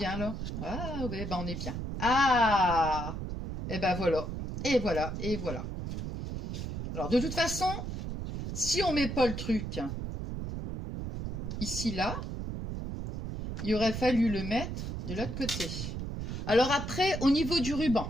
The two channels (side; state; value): right; noise; rumble, 5 dB below the sound